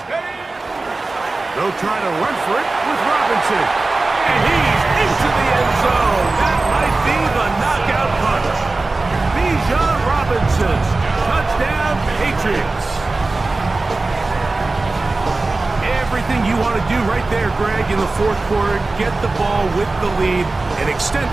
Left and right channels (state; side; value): quieter; left; 3.3 dB